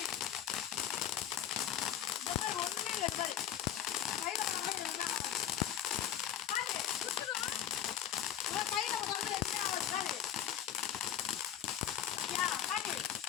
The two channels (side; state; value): right; quieter; 10.2 dB